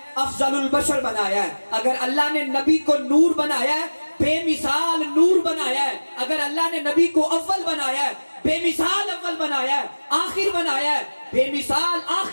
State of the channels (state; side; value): inverted; both; correlation -1.00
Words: افضل البشر بنایا ہے، اگر اللہ نے نبی کو نور بنایا ہے، بے مثال نور بنایا ہے، اگر اللہ نے نبی کو اول بنایا ہے، بے مثال اول بنایا ہے، آخر بنایا ہے، بے مثال